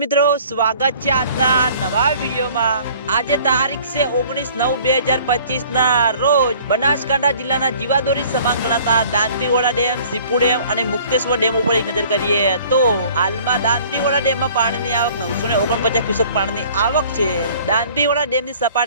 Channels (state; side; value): inverted; both; correlation -0.52